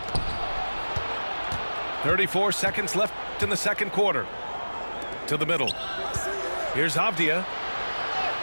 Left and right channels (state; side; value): inverted; both; correlation -1.00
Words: 34 seconds left in the second quarter. To the middle. Here's Avdia.